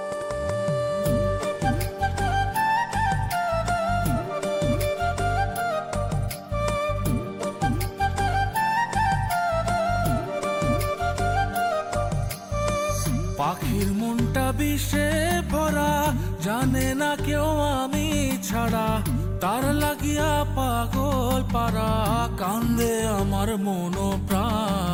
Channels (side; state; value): both; identical; correlation 1.00